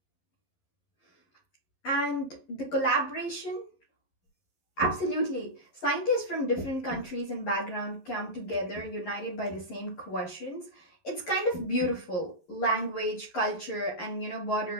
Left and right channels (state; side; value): late; right; 11 ms